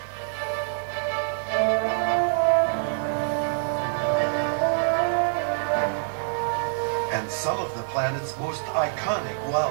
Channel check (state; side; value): silent; left; digital silence